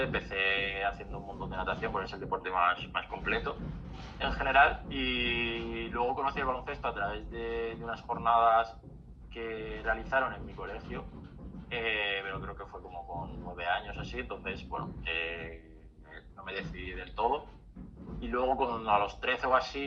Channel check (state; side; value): identical; both; correlation 1.00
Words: Empecé haciendo un montón de natación, porque es el deporte más completo en general. Y luego conocí el baloncesto a través de unas jornadas que realizaron en mi colegio, pero creo que fue como con 9 años así. Entonces, bueno, no me decidí del todo. Y luego a los 13 o